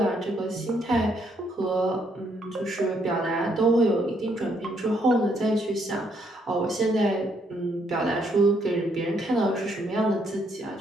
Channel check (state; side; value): normal; both; correlation 0.72